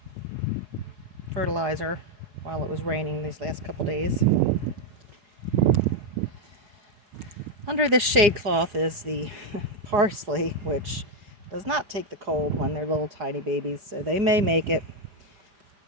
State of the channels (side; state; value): left; late; 4.8 ms